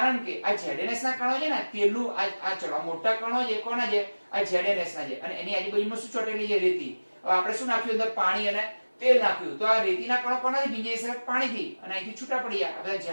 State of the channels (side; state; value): both; inverted; correlation -1.00